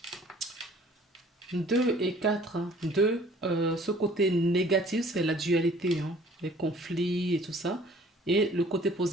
2 et 4, 2, ce côté négatif, c'est la dualité, hein, les conflits et tout ça. Et le côté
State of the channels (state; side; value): normal; both; correlation 0.54